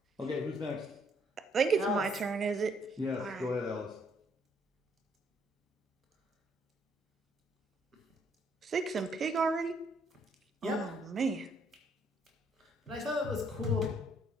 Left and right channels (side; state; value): both; normal; correlation 0.69